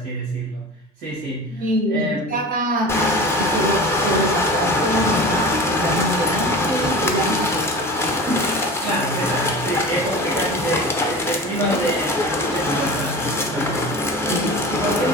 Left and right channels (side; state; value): both; normal; correlation 0.34